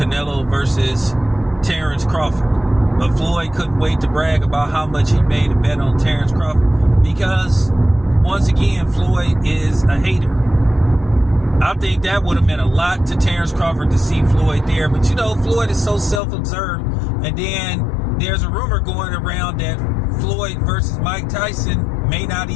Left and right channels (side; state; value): right; drops out; at 16.2 s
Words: versus Terrence Crawford. But Floyd couldn't wait to brag about how much he made a bet on Terrence Crawford because, once again, Floyd is a hater. I think that would have meant a lot to Terrence Crawford to see Floyd there. But, you know, Floyd is so self-observed. And then there's a rumor going around that Floyd versus Mike Tyson may not